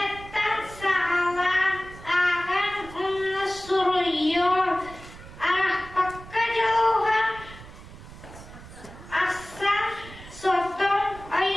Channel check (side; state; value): right; noise; rumble, 17 dB below the sound